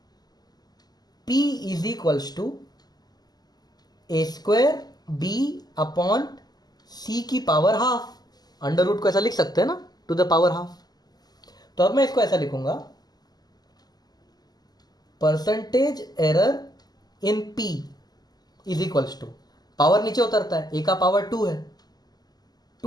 p is equals to a² b upon c की पावर हाफ। अंडर रूट को ऐसा लिख सकते हैं ना, टू द पावर हाफ। तो अब मैं इसको ऐसा लिखूंगा, percentage error in p is equals to, power नीचे उतरता है, a का पावर 2 है,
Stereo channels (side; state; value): right; late; 0.20 ms